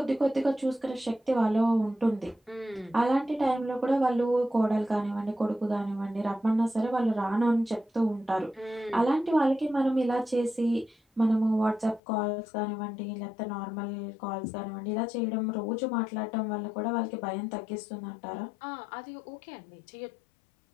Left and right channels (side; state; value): right; drops out; at 12.0 s